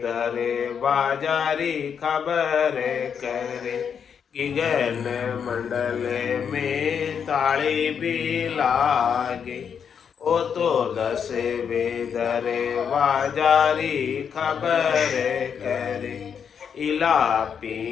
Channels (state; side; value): quieter; right; 7.3 dB